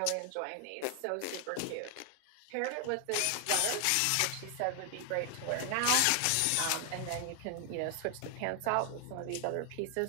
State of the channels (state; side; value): different; both; correlation 0.00